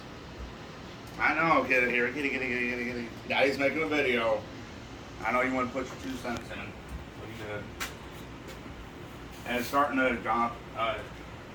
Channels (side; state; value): both; identical; correlation 1.00